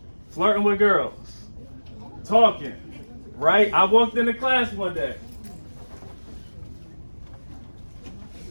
flirting with girls, talking, right? I walked into class one day.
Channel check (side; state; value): both; inverted; correlation -1.00